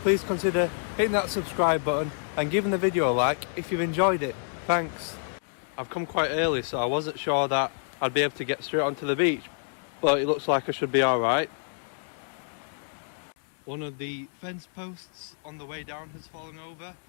please consider hitting that subscribe button and giving the video a like if you've enjoyed it. Thanks. I've come quite early, so I wasn't sure that I'd be able to get straight onto the beach, but it looks like I should be alright. One of the fence posts on the way down has fallen over.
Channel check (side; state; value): right; silent; digital silence